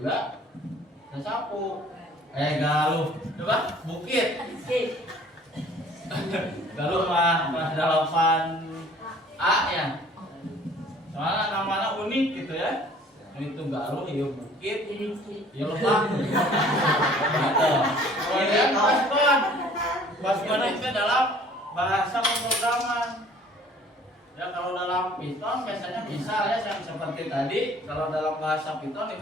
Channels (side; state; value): both; normal; correlation 0.53